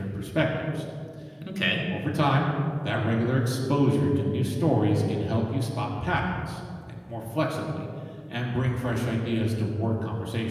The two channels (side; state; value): both; identical; correlation 1.00